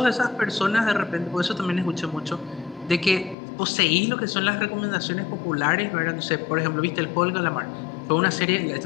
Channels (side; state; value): right; drops out; at 3.4 s